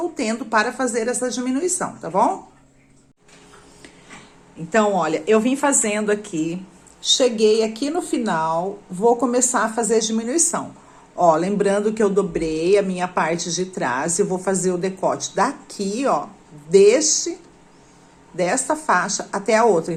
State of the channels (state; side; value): identical; both; correlation 1.00